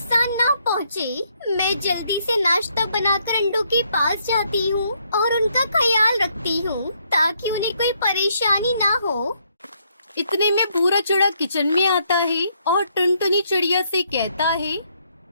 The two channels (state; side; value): inverted; both; correlation -0.72